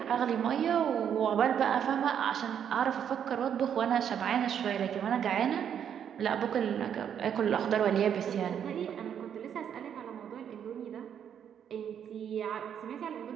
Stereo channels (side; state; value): left; quieter; 8.7 dB